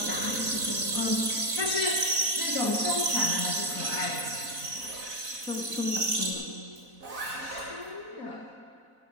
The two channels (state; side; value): late; left; 4.0 ms